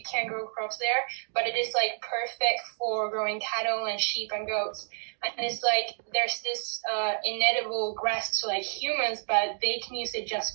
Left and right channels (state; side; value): silent; left; digital silence